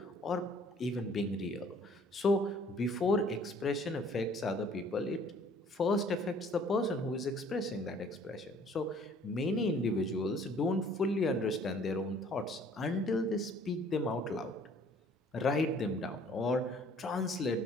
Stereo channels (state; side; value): normal; both; correlation 0.57